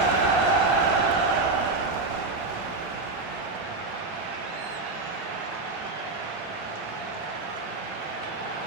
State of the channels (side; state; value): left; quieter; 3.4 dB